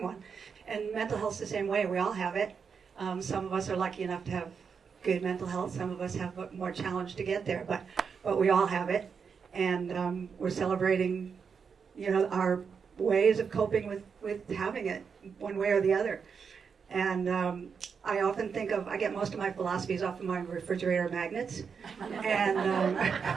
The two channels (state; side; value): quieter; left; 6.1 dB